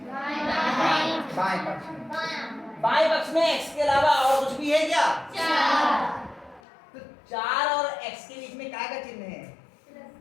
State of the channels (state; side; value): drops out; right; at 6.6 s